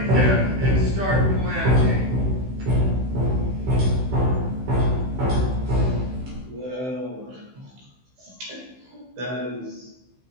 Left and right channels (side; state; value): left; late; 15 ms